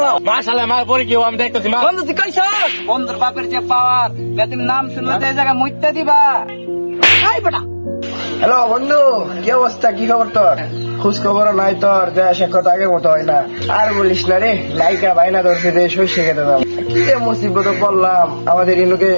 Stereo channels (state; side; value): inverted; both; correlation -1.00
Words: মাশাআল্লাহ মার পরে কি আমি দেখতেছি মা। বন্ধু তুই কইছ বন্ধুর বাপের যে পাওয়ার, তুমি নাম শুনলে তো এই জায়গায় মুইত্যা দিবা। এই বেটা হ্যালো বন্ধু, কি অবস্থা? কি খবর তোর? খোঁজ খবর নাই তোর, দেশে কথা আগের মতো হয় না। আর বলিস না রে, নায়িকা বাইনা ধরছে যে শস্য খেতে দাম। কি যে মুসিবত পড়লাম, আমাদের ইনুকে